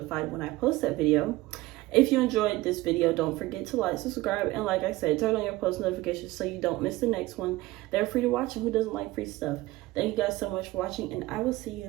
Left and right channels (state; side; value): quieter; left; 18.7 dB